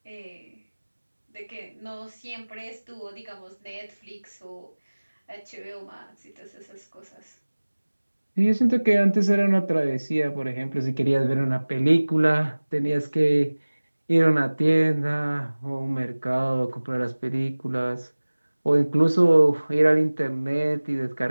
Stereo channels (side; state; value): both; inverted; correlation -1.00